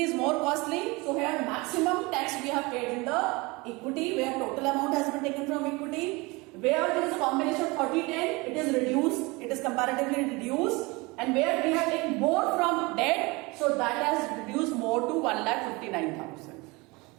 is more costly. So here maximum tax we have paid in the equity, where total amount has been taken from equity. Where there is a combination of 30-10, it is reduced. It is comparatively reduced. And where we have taken more from debt, so that has reduced more to 1,59,000.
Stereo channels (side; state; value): left; quieter; 25.0 dB